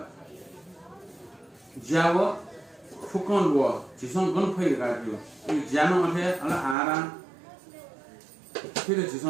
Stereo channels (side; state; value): left; drops out; at 6.8 s